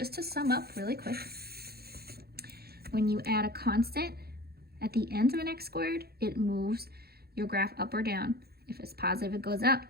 to sum up really quick, when you add a constant at the end of an x squared, it moves your graph up or down. If it's positive, it goes up.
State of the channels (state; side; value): late; left; 0.46 ms